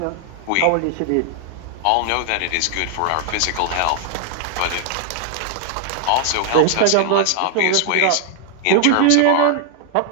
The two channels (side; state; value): both; different; correlation 0.00